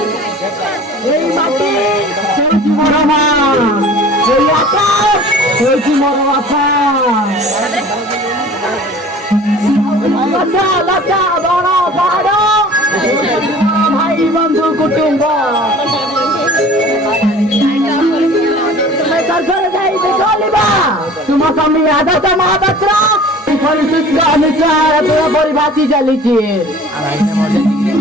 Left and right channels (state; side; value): normal; both; correlation 0.45